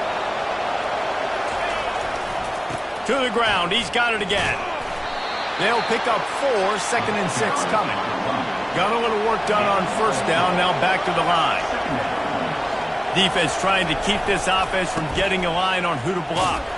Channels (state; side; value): identical; both; correlation 1.00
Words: To the ground. He's got it again. They'll pick up 4, 2nd and 6 coming. Got a little work done on 1st down, now back to the line. Defense trying to keep this offense from getting a line on who to block.